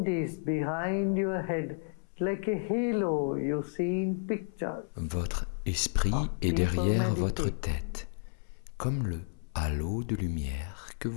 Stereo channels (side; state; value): right; silent; 57 dB below the other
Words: Votre esprit est derrière votre tête, comme le halo de lumière que